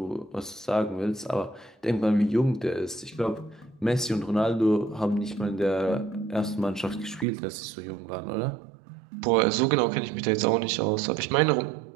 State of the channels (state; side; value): drops out; left; at 7.2 s